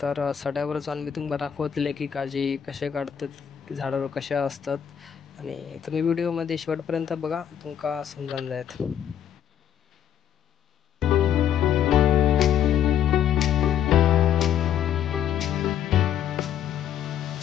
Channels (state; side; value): quieter; right; 9.5 dB